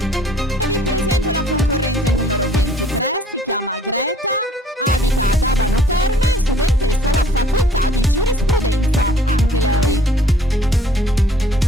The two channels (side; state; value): both; normal; correlation 0.57